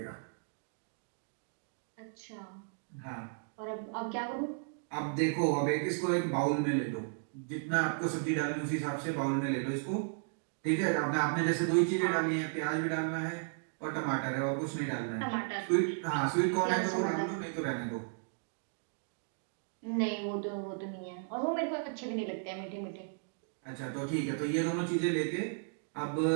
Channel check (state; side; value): silent; left; digital silence